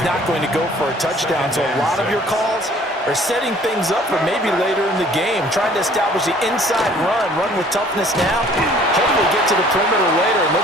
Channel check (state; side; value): normal; both; correlation 0.54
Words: not going to go for a touchdown. So a lot of your calls are setting things up for maybe later in the game, trying to establish the inside run with toughness now, hopefully get to the perimeter later. And